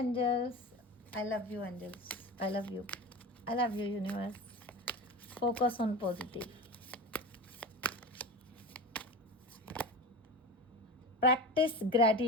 I love you angels, I love you, I love you universe. Focus on positive. Practice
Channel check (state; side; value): normal; both; correlation 0.28